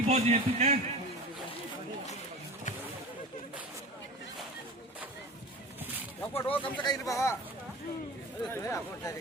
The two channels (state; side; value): normal; both; correlation 0.34